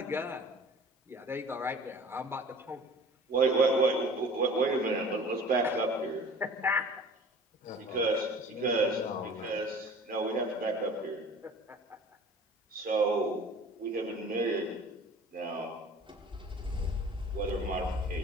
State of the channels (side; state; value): both; normal; correlation 0.45